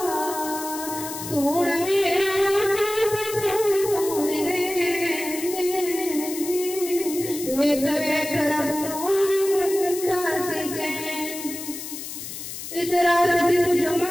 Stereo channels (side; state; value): left; noise; hiss, 9 dB below the sound